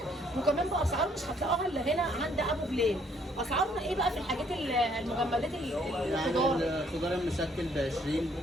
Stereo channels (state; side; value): normal; both; correlation 0.65